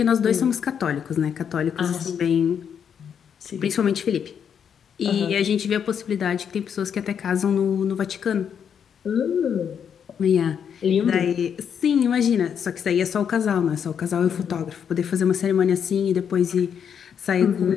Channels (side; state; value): right; quieter; 7.8 dB